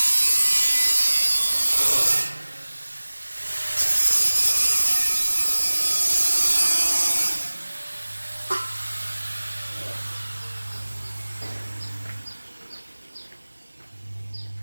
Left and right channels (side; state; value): both; inverted; correlation -1.00